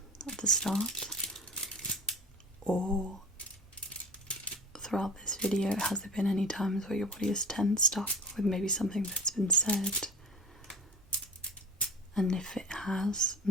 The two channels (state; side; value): normal; both; correlation 0.35